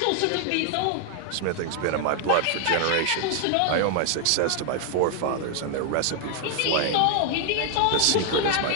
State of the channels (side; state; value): both; different; correlation 0.00